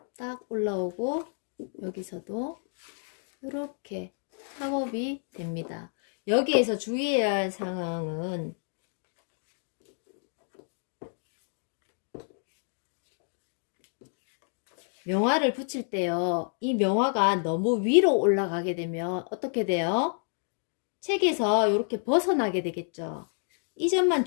딱 올라오고 여기서도 이렇게 팝업이 됩니다. 여기에서 주의해야 할 상황은 명화를 붙일 때요. 이 명화가 너무 위로 올라가게 되면 어떻게 돼요? 책에서 이렇게 벗어나게 되겠죠. 이 점만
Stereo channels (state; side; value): silent; right; 58 dB below the other